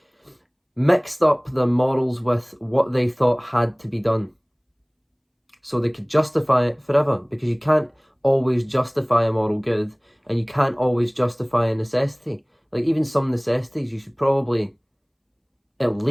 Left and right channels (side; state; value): both; identical; correlation 1.00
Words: mixed up their morals with what they thought had to be done. So they could justify it forever, because you can't always justify a moral good and you can't always justify a necessity. Like, even some necessities, you should probably at